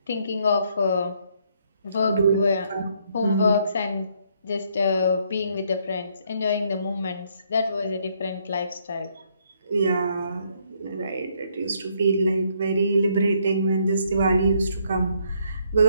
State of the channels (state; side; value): inverted; both; correlation -0.70